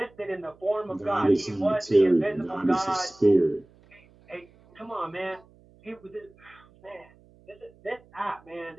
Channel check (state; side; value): noise; right; hum, 28 dB below the sound